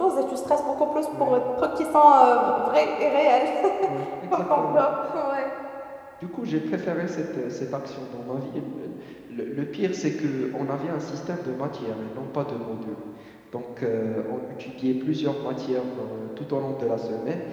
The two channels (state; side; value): identical; both; correlation 1.00